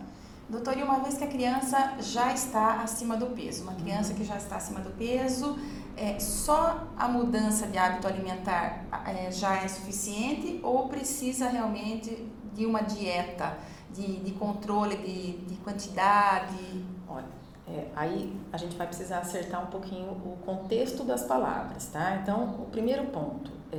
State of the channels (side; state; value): both; identical; correlation 1.00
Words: Doutor, e uma vez que a criança já está acima do peso, uma criança que já está acima do peso, só a mudança de hábito alimentar já é suficiente ou precisa realmente de uma dieta, de controle de quantidade? Olha, aí a gente vai precisar acertar um pouquinho o contexto das palavras, tá? Então, o primeiro ponto,